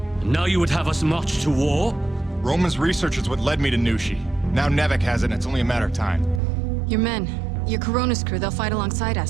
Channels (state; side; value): drops out; left; at 6.4 s